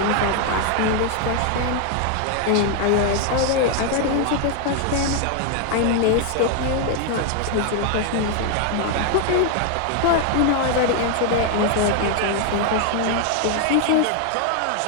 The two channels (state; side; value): different; both; correlation 0.00